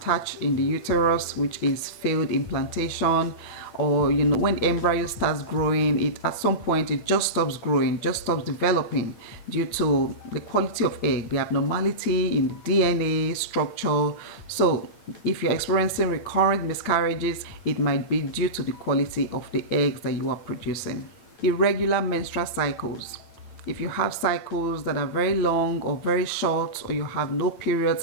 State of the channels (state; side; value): late; right; 9.0 ms